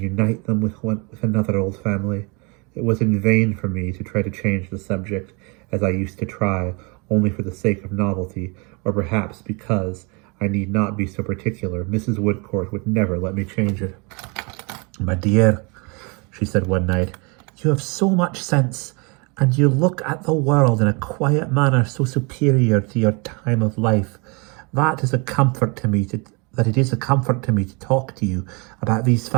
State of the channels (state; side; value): quieter; left; 30.7 dB